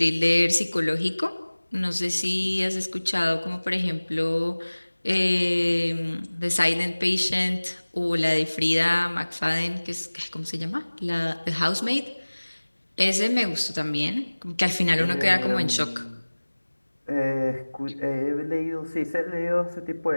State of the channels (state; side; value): inverted; both; correlation -1.00